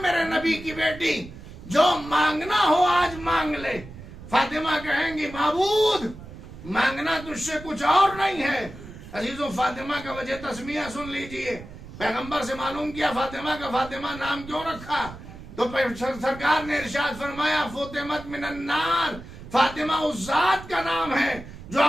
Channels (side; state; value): right; noise; rumble, 15 dB below the sound